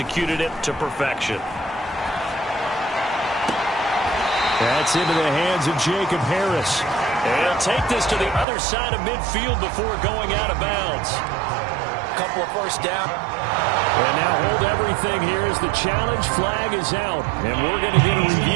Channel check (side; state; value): left; drops out; at 8.5 s